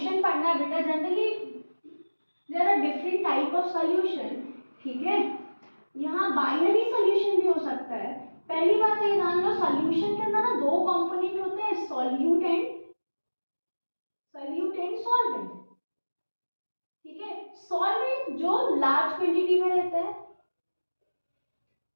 पढ़ना है बेटा, generally there are different type of solution. ठीक है, यहाँ बाइनरी सॉल्यूशन भी हो सकता है। पहली बात ये जान लो, सॉल्यूशन के अंदर ना दो कंपोनेंट होते हैं, सॉल्यूट एंड सॉल्वेंट। ठीक है, सॉल्वेंट जो लार्ज क्वांटिटी में रहता है,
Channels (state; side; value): inverted; both; correlation -1.00